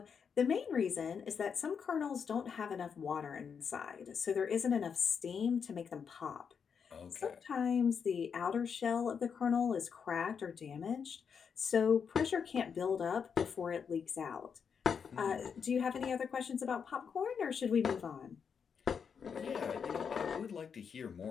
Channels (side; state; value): right; quieter; 6.6 dB